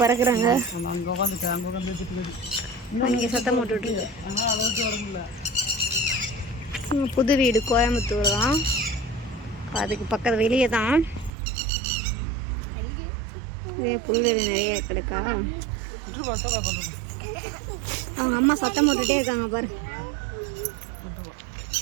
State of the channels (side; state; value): left; drops out; at 11.3 s